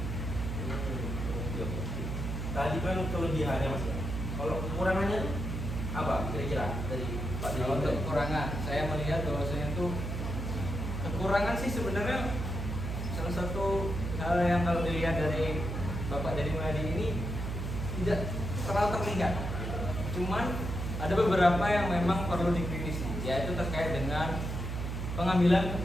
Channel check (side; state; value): right; noise; hum, 4 dB below the sound